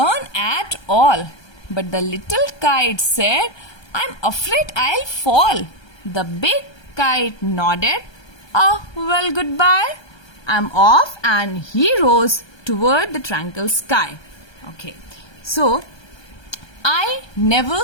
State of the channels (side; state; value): right; late; 1.3 ms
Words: at all. But the little kite said, I'm afraid I'll fall. The big kite nodded. Oh, well, goodbye. I'm off, and he rose toward the tranquil sky. Okay, so I never